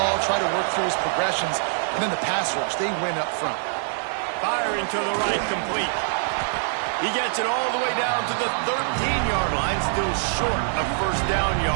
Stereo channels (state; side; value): silent; left; digital silence